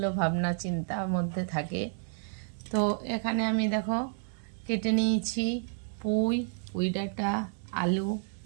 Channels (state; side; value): silent; left; digital silence